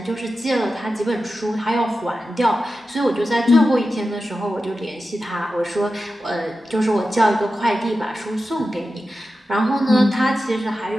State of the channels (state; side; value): normal; both; correlation 0.92